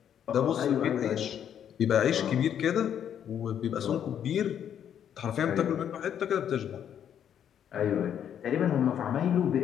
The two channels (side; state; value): right; quieter; 9.3 dB